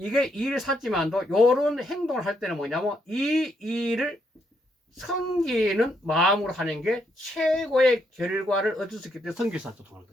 일을 샀지만도 요런 행동을 할 때는 뭐냐면 이 일을 섬기는 마음으로 하는 게 최고의 결과를 얻을 수 있기 때문에 성기사도 통하는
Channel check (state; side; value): normal; both; correlation 0.76